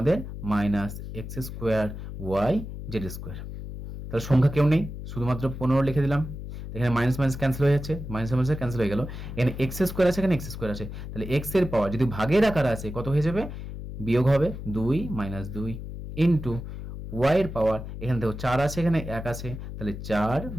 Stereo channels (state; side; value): noise; left; hum, 9 dB below the sound